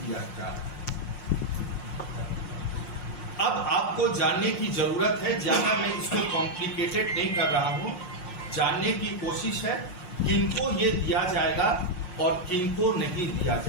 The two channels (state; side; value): late; right; 5.6 ms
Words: दिया गया। अब आपको जानने की जरूरत है, ज्यादा मैं इसको कॉम्प्लिकेटेड नहीं कर रहा हूं, जानने की कोशिश है किनको ये दिया जाएगा और किनको नहीं दिया